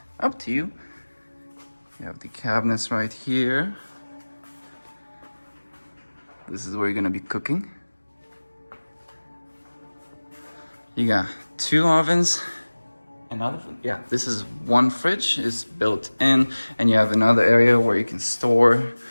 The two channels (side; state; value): both; inverted; correlation -1.00